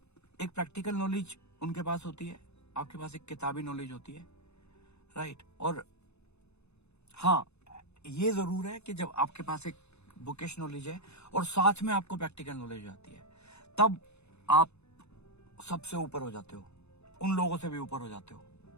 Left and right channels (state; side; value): late; right; 0.80 ms